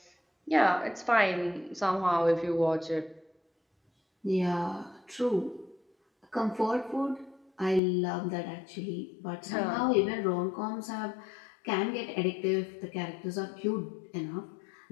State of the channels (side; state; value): right; drops out; at 7.8 s